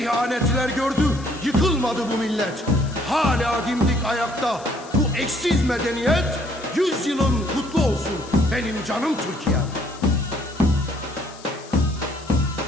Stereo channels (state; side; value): noise; left; hiss, 20 dB below the sound